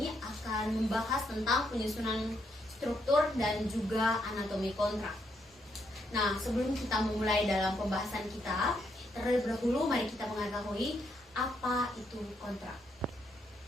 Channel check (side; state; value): both; normal; correlation 0.77